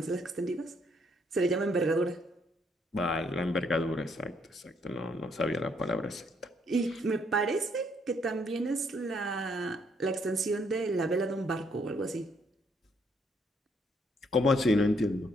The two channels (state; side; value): normal; both; correlation 0.70